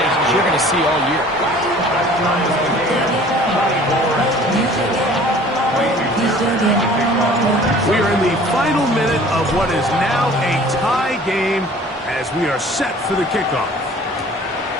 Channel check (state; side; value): normal; both; correlation 0.49